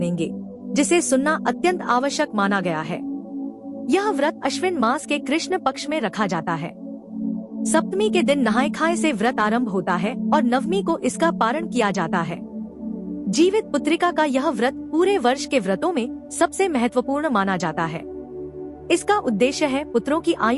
जिसे सुनना अत्यंत आवश्यक माना गया है। यह व्रत अश्विन मास के कृष्ण पक्ष में रखा जाता है। सप्तमी के दिन नहाए खाए से व्रत आरंभ होता है और नवमी को इसका पारण किया जाता है। जीवित पुत्रिका का यह व्रत पूरे वर्ष के व्रतों में सबसे महत्वपूर्ण माना जाता है। इसका उद्देश्य है पुत्रों की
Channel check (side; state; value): both; identical; correlation 1.00